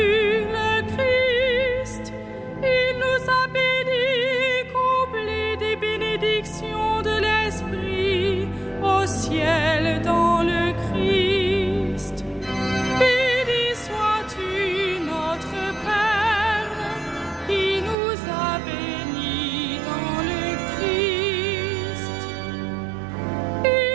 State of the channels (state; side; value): drops out; left; at 17.9 s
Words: Christ. Il nous a bénis, comblés des bénédictions de l'Esprit, au ciel dans le Christ. Béni sois-tu, notre Père, qui nous a bénis dans le Christ.